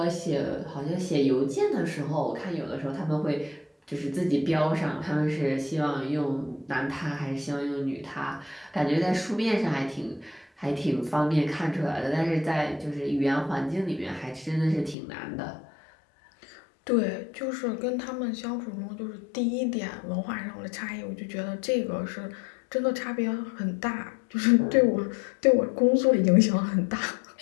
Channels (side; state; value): right; drops out; at 15.0 s